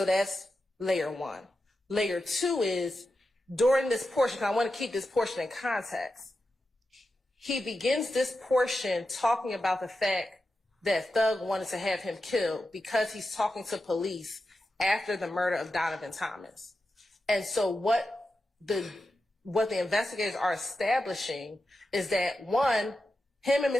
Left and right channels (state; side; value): normal; both; correlation 0.90